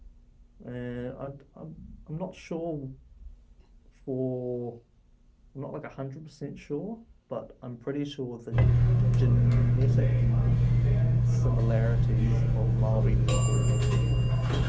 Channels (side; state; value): both; identical; correlation 1.00